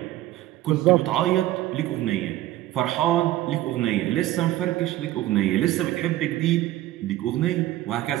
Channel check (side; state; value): left; quieter; 15.0 dB